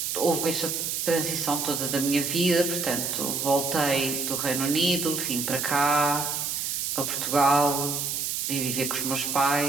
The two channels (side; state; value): right; noise; hiss, 1 dB below the sound